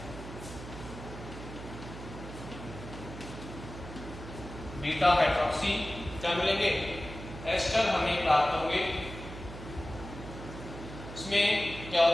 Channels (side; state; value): right; noise; hum, 12 dB below the sound